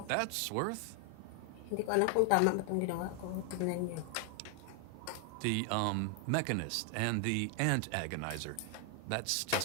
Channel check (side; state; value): both; different; correlation 0.00